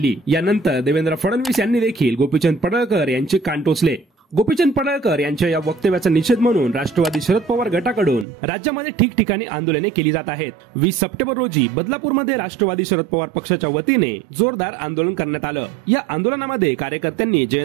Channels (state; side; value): drops out; left; at 8.2 s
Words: यानंतर देवेंद्र फडणवीस यांनी देखील गोपीचंद पडळकर यांचे कान टोचले। गोपीचंद पडळकर यांच्या या वक्तव्याचा निषेध म्हणून राष्ट्रवादी शरद पवार गटाकडून राज्यामध्ये ठिकठिकाणी आंदोलने केली जात आहेत। 20 सप्टेंबर रोजी बदलापूरमध्ये राष्ट्रवादी शरद पवार पक्षाच्या वतीने जोरदार आंदोलन करण्यात आलं। या आंदोलनामध्ये कार्यकर्त्यांनी